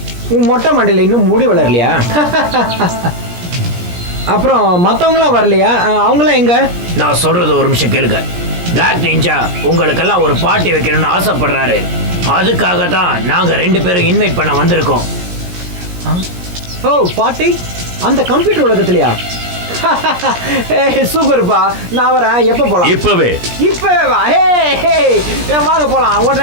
உன் மொட்டை மண்டையில் இன்னும் முடி வளரலையா? அப்புறம் மற்றவங்களாம் வரலையா? அவங்களாம் எங்க? நான் சொல்றது ஒரு நிமிஷம் கேளுங்க. பிளாக் நிஞ்சா உங்களுக்கெல்லாம் ஒரு பார்ட்டி வைக்கணும்னு ஆசைப்படுறாரு. அதுக்காக தான் நாங்க 2 பேரும் இன்வைட் பண்ண வந்திருக்கோம். ஓ, பார்ட்டி? அந்த கம்ப்யூட்டர் உலகத்திலையா? சூப்பர்ப்பா, நான் வரேன். எப்போ போலாம்? இப்பவே வா. ஹே, வாங்க போலாம்,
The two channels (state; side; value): late; left; 17 ms